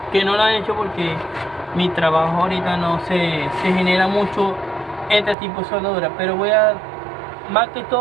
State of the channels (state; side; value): drops out; left; at 5.4 s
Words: lo he hecho, porque mi trabajo ahorita no se genera mucho este tipo de soldadura, pero voy a más que